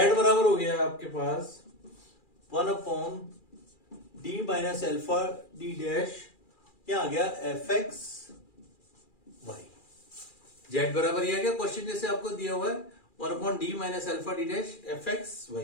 बराबर हो गया आपके पास 1 upon D minus alpha D dash, क्या आ गया एफ एक्स वाई। जेड बराबर ये आ गया क्वेश्चन जैसे आपको दिया हुआ है 1 upon D minus alpha D dash F x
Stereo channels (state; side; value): late; right; 2.4 ms